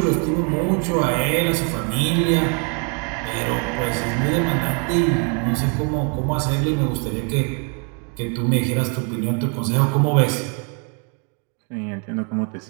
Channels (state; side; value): quieter; left; 38.1 dB